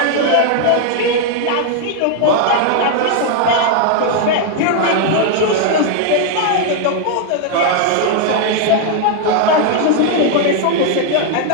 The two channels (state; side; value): different; both; correlation 0.00